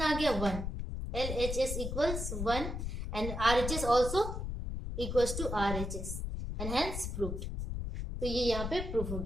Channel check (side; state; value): left; noise; rumble, 4 dB below the sound